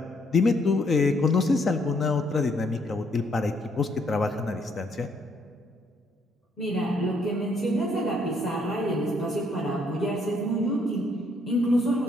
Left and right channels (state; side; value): normal; both; correlation 0.70